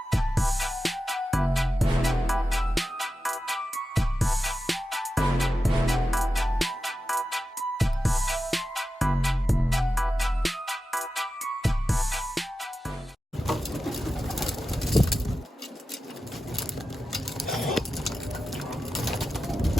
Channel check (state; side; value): normal; both; correlation 0.92